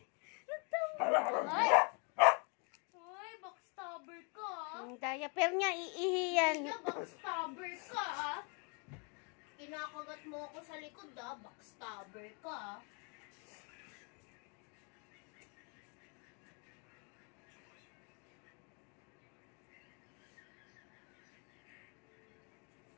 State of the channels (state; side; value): quieter; right; 35.2 dB